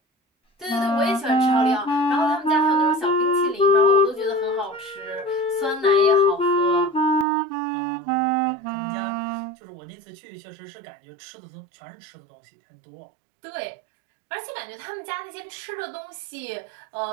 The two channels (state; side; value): drops out; left; at 7.2 s